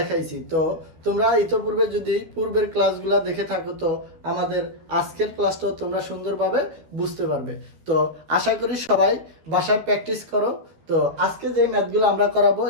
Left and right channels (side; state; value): left; late; 13 ms